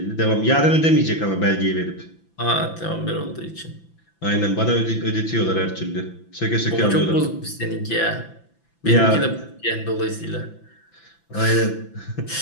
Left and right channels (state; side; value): late; right; 5.9 ms